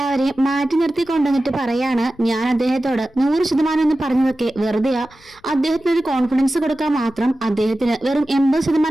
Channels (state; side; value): noise; left; rumble, 28 dB below the sound